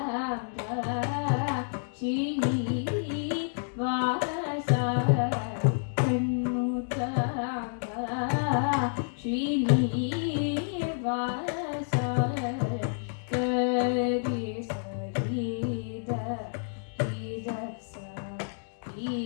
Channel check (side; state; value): right; silent; digital silence